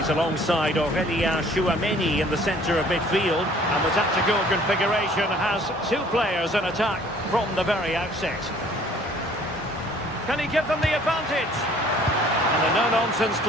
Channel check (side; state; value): both; normal; correlation 0.55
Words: alongside Aurélien Tchouaméni in the centre of midfield. And the tactical configuration has two players in attack from the very outset. Can he give them the advantage? And a no-nonsense